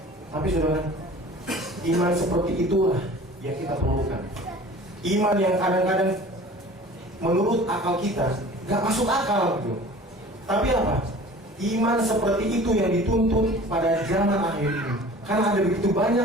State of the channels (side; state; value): both; normal; correlation 0.44